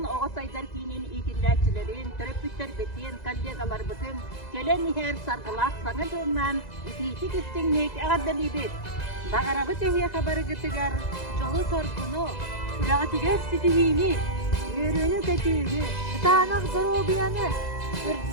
Oğuzaylar kinin ikindaçilerin, terapütler betin, kollegalar bütün, gelen her sargılar sana dönmen, iki kistinlik ağırdalıydı. Dağarabı tehiye haberı gıtıgar, çolu sorgunu, kulağı tiger sitihini, yürüyünü kötüyünü, kıtağına zor obiyanı,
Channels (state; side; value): late; right; 2.0 ms